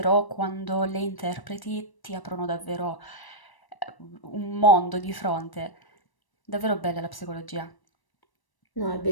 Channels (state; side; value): late; right; 1.0 ms